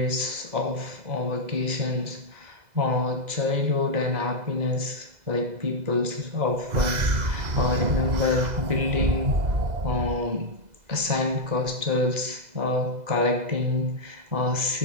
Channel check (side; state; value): left; late; 2.0 ms